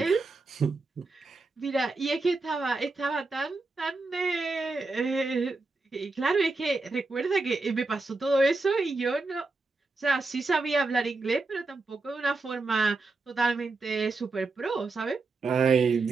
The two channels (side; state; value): left; quieter; 3.6 dB